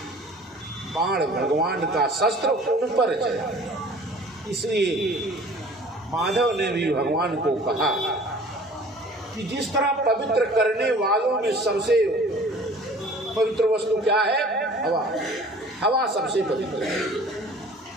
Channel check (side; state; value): both; normal; correlation 0.48